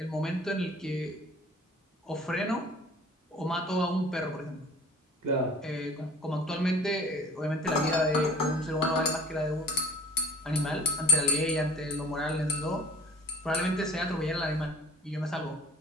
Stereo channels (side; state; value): both; normal; correlation 0.46